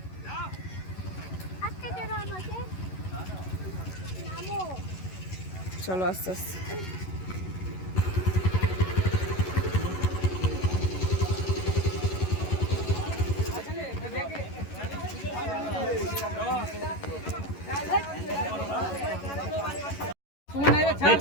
চলো আস্তে আস্তে।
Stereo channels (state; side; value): late; right; 11 ms